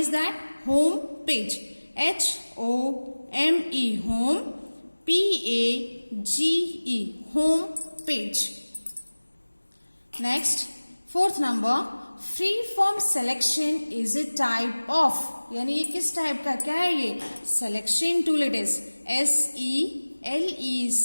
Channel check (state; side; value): inverted; both; correlation -1.00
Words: that? Home page. HOME home, PAGE home page. Next fourth number. Free form selection is a type of. यानी ये किस टाइप का, क्या है ये? Selection tool. It is